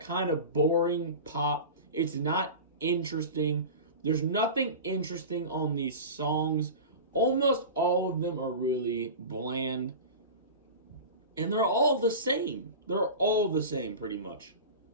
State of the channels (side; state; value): both; inverted; correlation -0.31